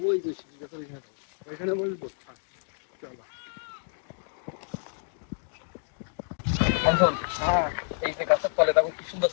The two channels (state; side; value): silent; right; digital silence